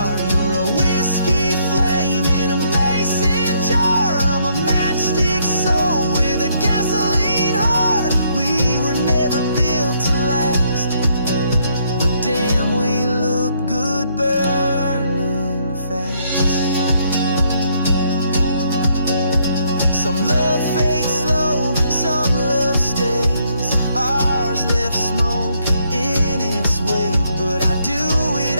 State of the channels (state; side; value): inverted; both; correlation -0.71